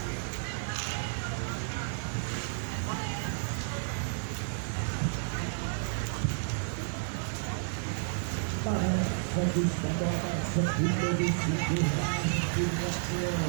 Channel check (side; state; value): left; silent; 57 dB below the other